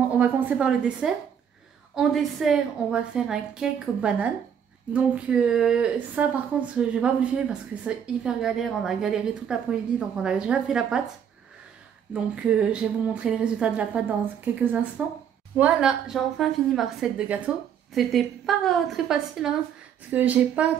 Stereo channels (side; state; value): left; quieter; 8.3 dB